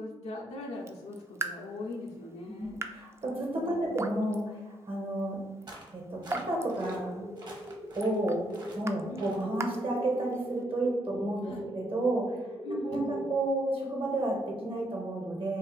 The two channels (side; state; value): both; normal; correlation 0.73